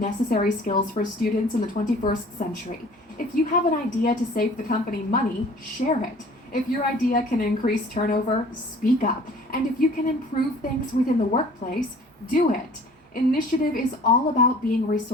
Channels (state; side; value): normal; both; correlation 0.49